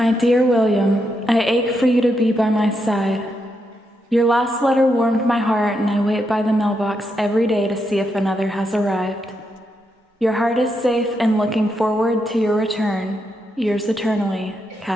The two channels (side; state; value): both; normal; correlation 0.82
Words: dear William, I ache for you to be by my side. Your last letter warmed my heart, and I wait by the mailbox every day to see if another has arrived. Your heart is safe and looking forward to your return. Yours eternally,